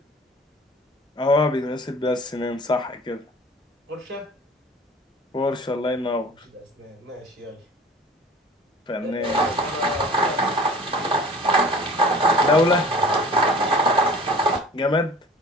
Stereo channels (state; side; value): normal; both; correlation 0.45